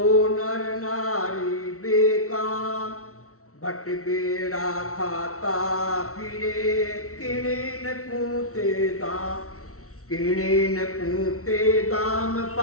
नर नारी बेकाम, भट बेड़ा खाता फिरे किणीन पूते दाम, किणीन पूते दाम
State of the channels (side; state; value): right; late; 0.64 ms